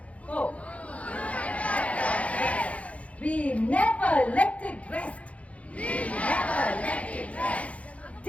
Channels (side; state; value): right; late; 0.065 ms